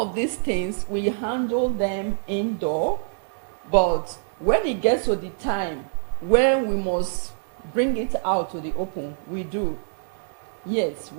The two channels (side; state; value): left; silent; digital silence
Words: these things we handle them indoor, but when it gets to the time when we must bring it out to the open, we do. Yes,